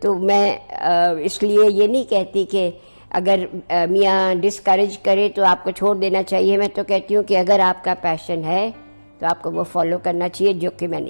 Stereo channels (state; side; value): inverted; both; correlation -1.00